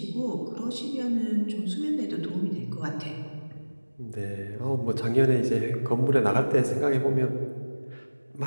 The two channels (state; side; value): inverted; both; correlation -1.00